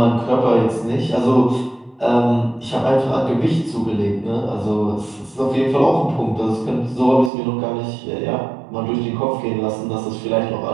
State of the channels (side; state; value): left; drops out; at 7.3 s